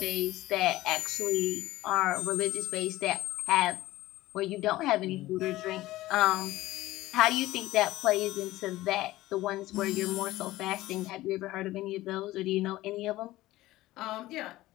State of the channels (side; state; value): right; quieter; 17.1 dB